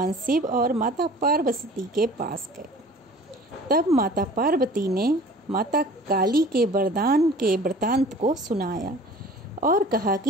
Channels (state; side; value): normal; both; correlation 0.46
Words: शिव और माता पार्वती के पास गए। तब माता पार्वती ने माता काली के वरदान के वृतांत को सुनाया और कहा